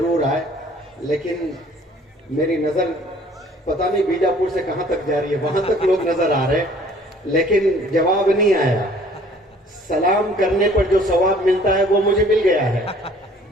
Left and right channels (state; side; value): normal; both; correlation 0.55